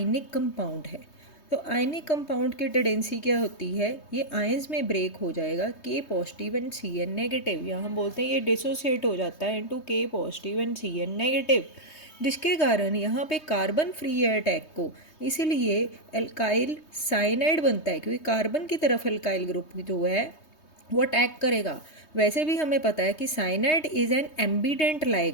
कंपाउंड है। तो आयनिक कंपाउंड की टेंडेंसी क्या होती है, ये आयंस में ब्रेक हो जाएगा K positive and Cn negative, या हम बोलते हैं ये डिसोसिएट हो जाता है into K positive and Cn negative, जिसके कारण यहाँ पे कार्बन फ्री है अटैक को, इसीलिए एल्काइल साइनाइड बनता है क्योंकि कार्बन की तरफ एल्काइल ग्रुप जो है वो अटैक करेगा। वैसे भी हमें पता है कि cyanide is an ambient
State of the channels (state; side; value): late; right; 3.2 ms